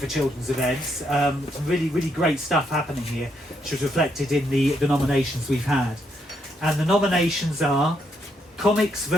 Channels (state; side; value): normal; both; correlation 0.76